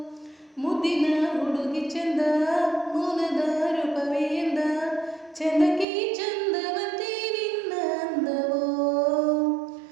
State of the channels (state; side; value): drops out; left; at 5.9 s